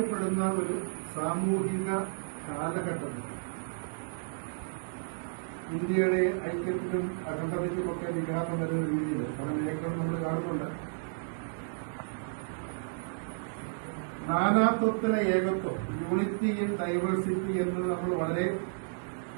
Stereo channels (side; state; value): left; silent; 56 dB below the other